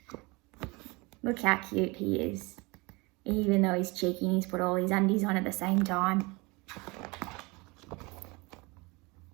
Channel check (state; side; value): quieter; left; 25.8 dB